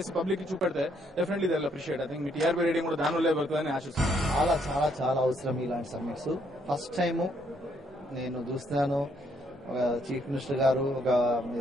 పబ్లిక్ కి చూపెడితే definitely they will appreciate. I think మీ టీఆర్పీ రేటింగ్ కూడా దానివల్లే పడుతుందని ఆశిస్తున్నాను. చాలా చాలా చాలా అవసరం ఇలాంటి సమ్మిట్స్. ఫస్ట్ టైము నేను చూస్తున్నాను చీఫ్ మినిస్టర్ గారు ఒక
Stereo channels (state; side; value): normal; both; correlation 0.71